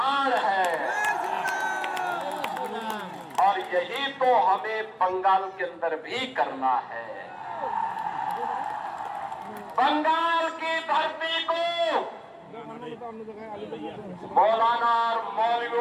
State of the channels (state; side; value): identical; both; correlation 1.00